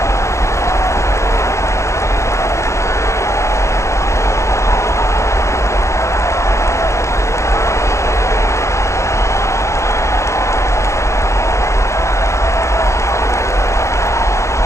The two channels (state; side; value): late; right; 0.14 ms